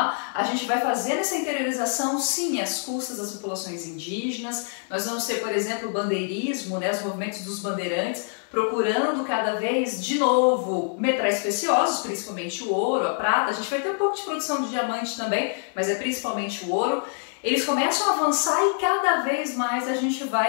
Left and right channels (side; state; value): right; silent; 61 dB below the other